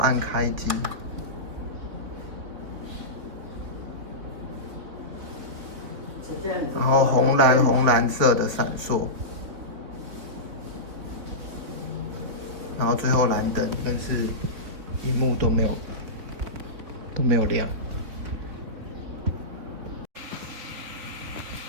开机，然后红蓝色的闪烁，然后最后蓝灯，但是屏幕都没有亮。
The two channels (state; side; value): late; left; 3.8 ms